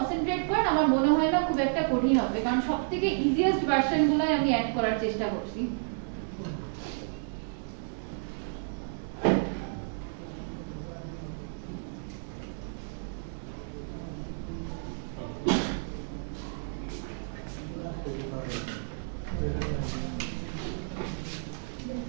করেন আমার মনে হয় না খুব একটা কঠিন হবে, কারণ সবথেকে ইজিয়েস্ট ভার্সনগুলাই আমি অ্যাড করার চেষ্টা করছি।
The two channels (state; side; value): silent; left; digital silence